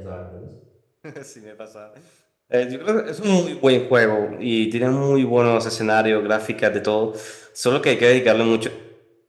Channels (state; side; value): identical; both; correlation 1.00